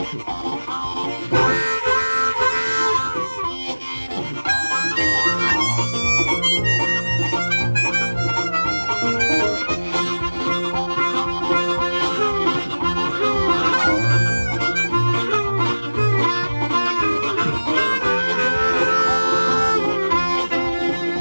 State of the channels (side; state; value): both; inverted; correlation -1.00